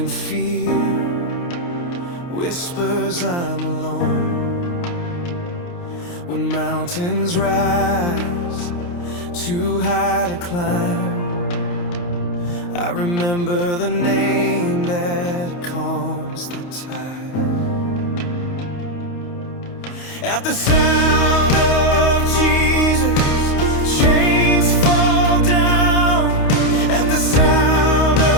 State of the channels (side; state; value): right; late; 29 ms